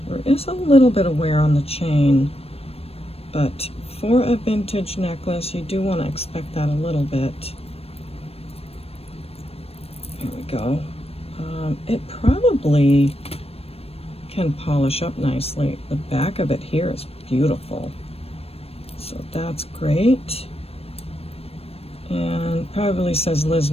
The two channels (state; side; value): late; right; 0.28 ms